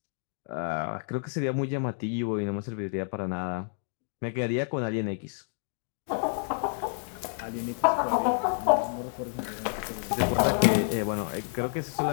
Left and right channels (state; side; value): silent; right; digital silence